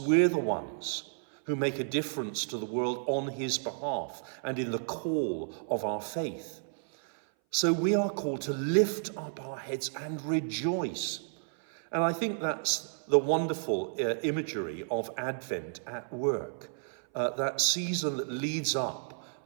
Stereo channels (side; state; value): left; silent; 57 dB below the other